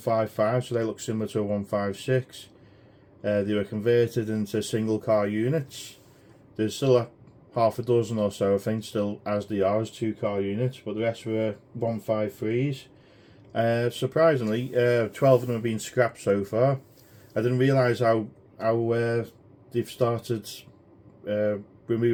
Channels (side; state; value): both; identical; correlation 1.00